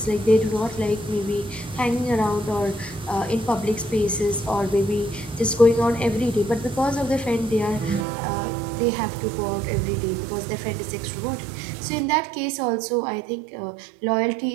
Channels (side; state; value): left; drops out; at 8.1 s